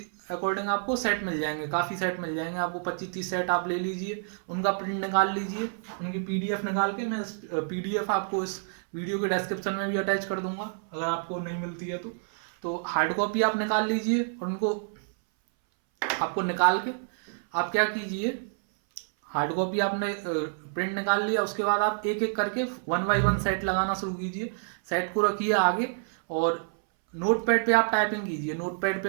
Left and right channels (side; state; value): left; silent; 59 dB below the other